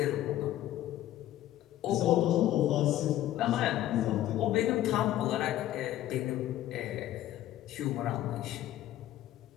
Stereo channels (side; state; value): right; quieter; 13.4 dB